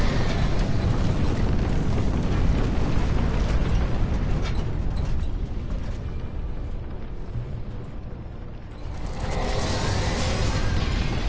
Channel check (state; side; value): identical; both; correlation 1.00